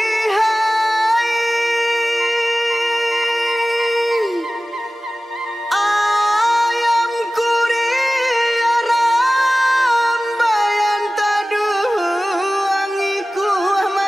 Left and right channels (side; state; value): both; normal; correlation 0.97